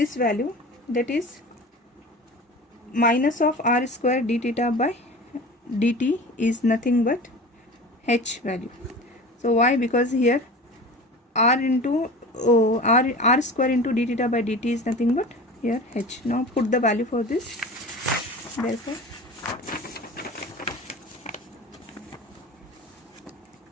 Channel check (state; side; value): normal; both; correlation 0.36